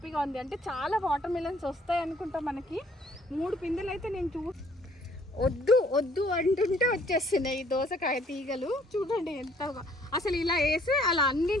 ఉంది. అంటే చాలా వాటర్ మిలన్స్ వస్తాయి అనుకుంటా మనకి. 3 పిందెలు అయితే నేను వద్దు అంటుంటే వచ్చేస్తున్నాయి ఈ దోసకాయ తీగలు. చూడండి ఎంత అసలు ఇలా వేసి అలా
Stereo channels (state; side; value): normal; both; correlation 0.61